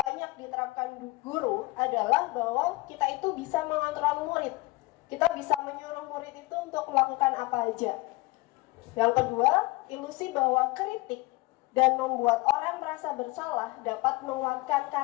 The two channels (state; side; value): quieter; right; 23.1 dB